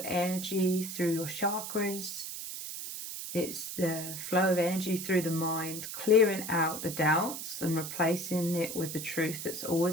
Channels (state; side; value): noise; right; hiss, 7 dB below the sound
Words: energy through your chakras. It's the flow of energy through the mind, clearing out the doubts and replacing it with the truth that's